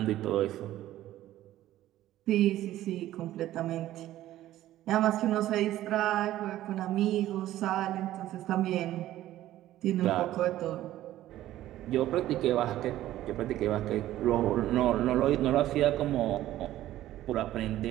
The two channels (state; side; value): quieter; left; 14.0 dB